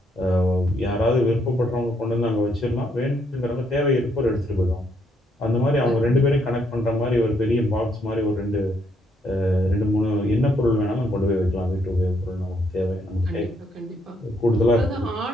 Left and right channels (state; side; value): normal; both; correlation 0.73